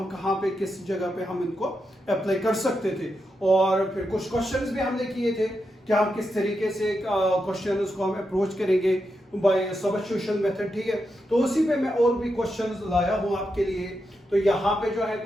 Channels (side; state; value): both; normal; correlation 0.86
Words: कहाँ पे किस जगह पे हम इनको अप्लाई कर सकते थे। और फिर कुछ क्वेश्चंस भी हमने किए थे कि हम किस तरीके से क्वेश्चन को हम अप्रोच करेंगे बाय सब्स्टिट्यूशन मेथड। ठीक है, तो उसी पे मैं और भी क्वेश्चंस लाया हूँ आपके लिए। तो यहाँ पे जो है